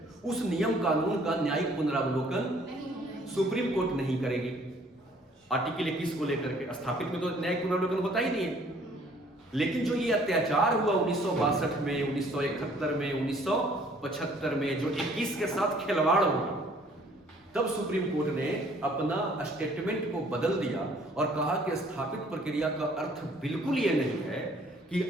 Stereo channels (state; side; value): normal; both; correlation 0.59